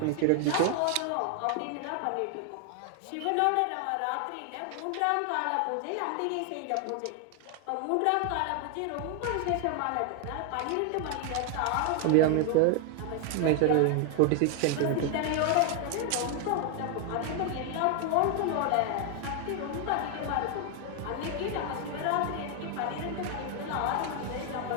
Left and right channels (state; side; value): different; both; correlation 0.00